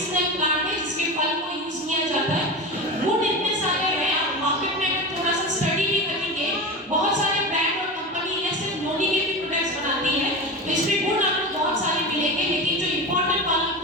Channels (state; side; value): normal; both; correlation 0.25